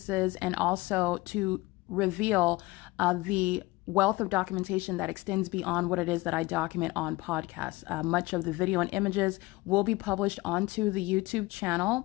and also to reveal the wealth of documentation that extends beyond what it is that I document on podcasts. Much of the video and images will be published onto the YouTube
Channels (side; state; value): right; quieter; 21.1 dB